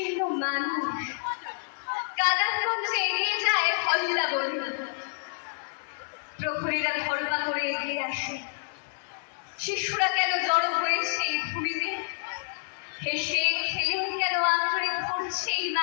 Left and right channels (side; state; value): right; silent; 59 dB below the other